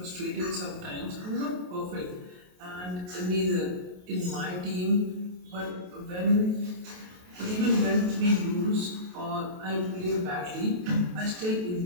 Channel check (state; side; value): late; left; 28 ms